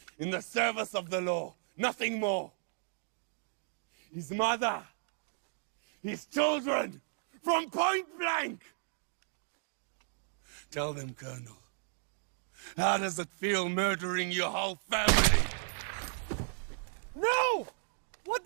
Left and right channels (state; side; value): silent; left; digital silence